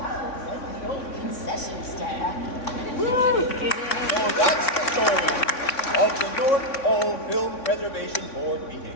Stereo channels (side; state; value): right; late; 3.5 ms